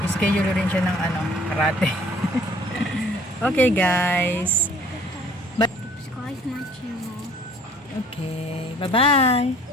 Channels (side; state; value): both; normal; correlation 0.55